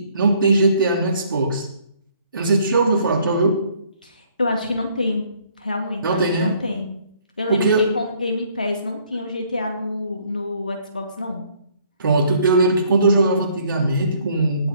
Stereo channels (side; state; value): both; inverted; correlation -0.63